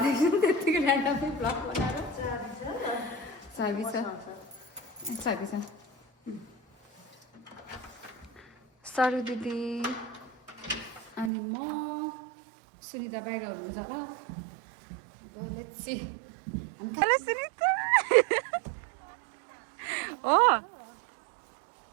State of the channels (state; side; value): drops out; left; at 11.3 s